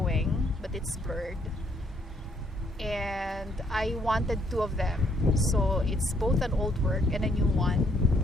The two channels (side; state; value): both; normal; correlation 0.69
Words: but it's blurred. And I wanted two of them. So it's both an old work and a new one.